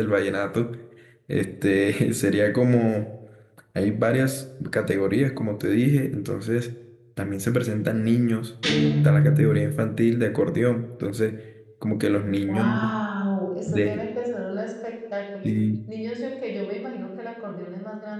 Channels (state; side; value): identical; both; correlation 1.00